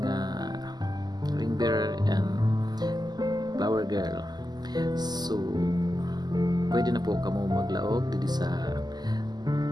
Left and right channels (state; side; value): late; left; 0.20 ms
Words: ring bearer and flower girl. So pwede na po kamo maglaog dito sa